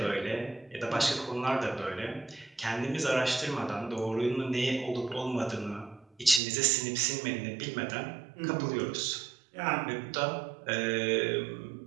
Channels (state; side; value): drops out; left; at 6.4 s